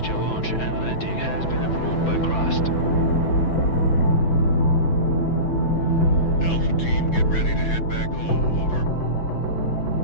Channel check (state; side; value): late; right; 6.0 ms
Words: launch and landing has been approved by Crust. Alpha team, get ready to head back home. Over.